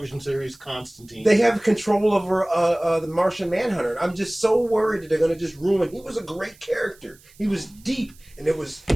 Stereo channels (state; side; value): noise; right; hiss, 27 dB below the sound